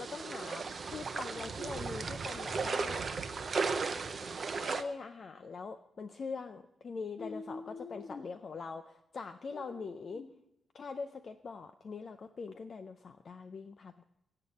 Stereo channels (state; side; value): normal; both; correlation 0.84